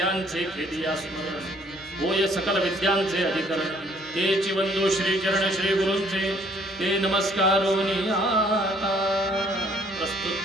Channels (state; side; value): normal; both; correlation 0.62